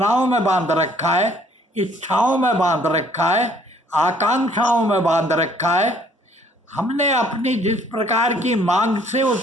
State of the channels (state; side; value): normal; both; correlation 0.61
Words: में बांध रखा है, इच्छाओं में बांध रखा है, आकांक्षाओं में बांध रखा है। हमने अपनी जिस प्रकार की मांग से